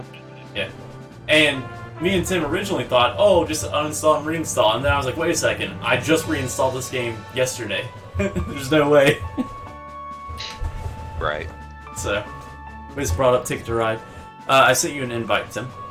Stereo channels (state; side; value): identical; both; correlation 1.00